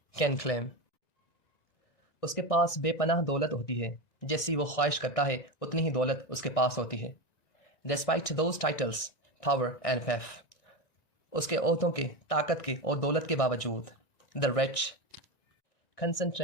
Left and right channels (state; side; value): late; right; 1.9 ms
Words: can claim. उसके पास बेपनाह दौलत होती है, जैसी वो ख्वाहिश करता है उतनी ही दौलत उसके पास होती है. Despite those titles power and PAF. उसके ओहदों के, ताकत के और दौलत के बावजूद. The rich